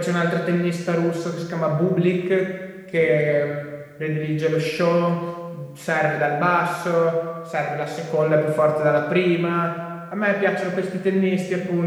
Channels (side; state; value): both; identical; correlation 1.00